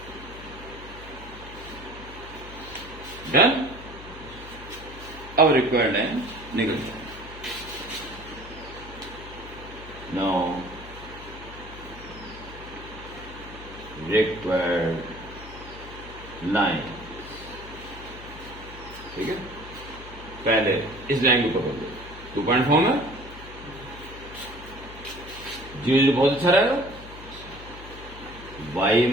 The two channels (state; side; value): noise; left; hum, 15 dB below the sound